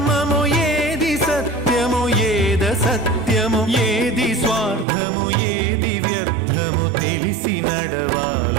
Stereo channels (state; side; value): drops out; left; at 4.9 s